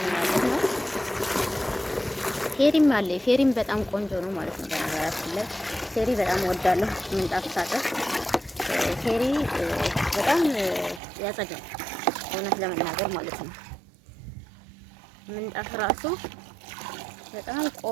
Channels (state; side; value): drops out; left; at 11.0 s